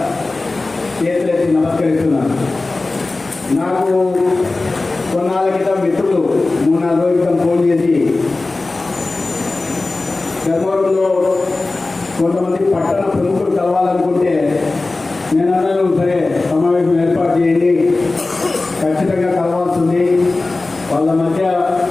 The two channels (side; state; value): right; quieter; 3.3 dB